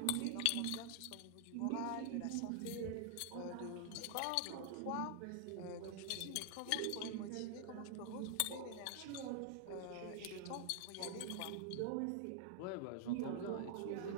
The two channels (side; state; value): both; different; correlation 0.00